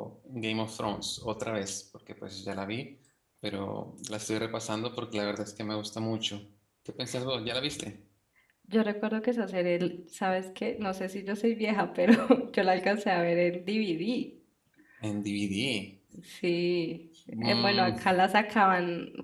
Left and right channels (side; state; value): both; identical; correlation 1.00